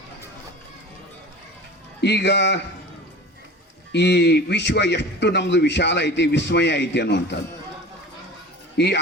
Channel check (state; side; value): normal; both; correlation 0.37